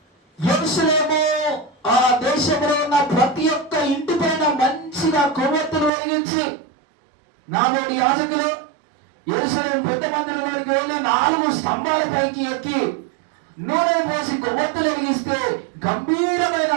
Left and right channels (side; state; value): left; drops out; at 5.9 s